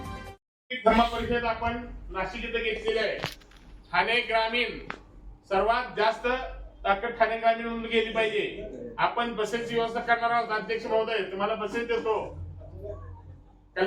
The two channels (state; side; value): identical; both; correlation 1.00